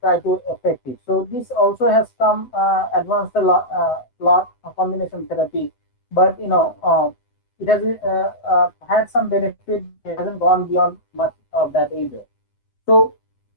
try to affect it. So this also has come advanced a lot of combination therapy, but it has had some benefit, but it hasn't gone beyond much of that either. So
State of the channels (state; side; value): late; right; 8.0 ms